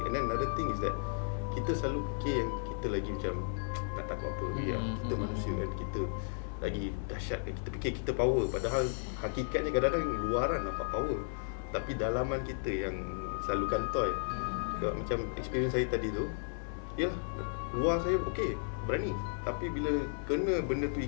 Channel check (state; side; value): silent; right; 55 dB below the other